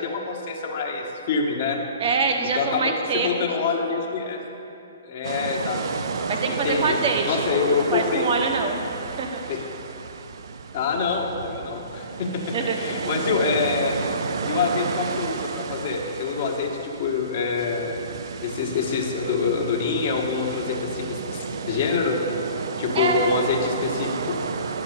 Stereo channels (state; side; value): inverted; both; correlation -0.44